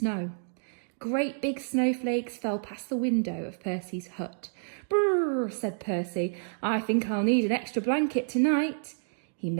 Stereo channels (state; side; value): silent; left; digital silence